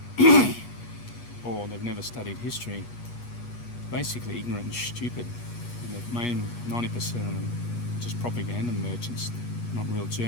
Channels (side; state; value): right; late; 8.3 ms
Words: or they've never studied history, basically ignorant and stupid. And the main 90% of them are just propaganda merchants, not real